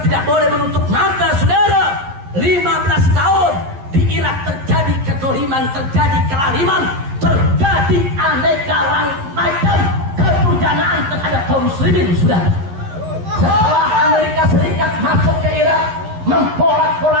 tidak boleh menutup mata, saudara. 15 tahun di Irak terjadi kezaliman, terjadi kelaliman, terjadi aneka macam keturjanaan terhadap kaum muslimin, saudara. Setelah Amerika Serikat masuk ke Irak,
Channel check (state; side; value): late; left; 11 ms